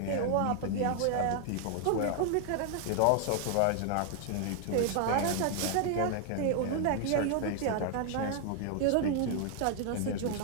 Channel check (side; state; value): both; different; correlation 0.00